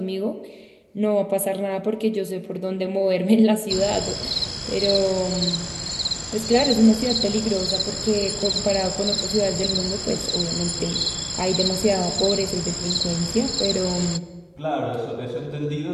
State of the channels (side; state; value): both; identical; correlation 1.00